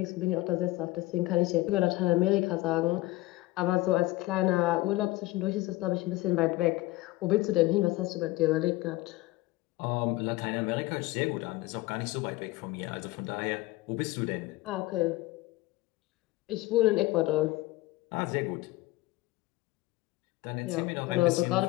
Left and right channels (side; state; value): right; quieter; 19.2 dB